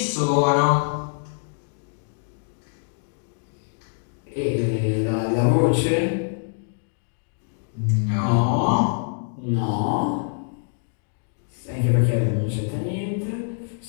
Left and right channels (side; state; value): right; silent; digital silence